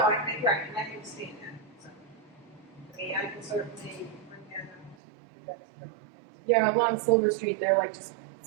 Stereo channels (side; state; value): left; drops out; at 5.0 s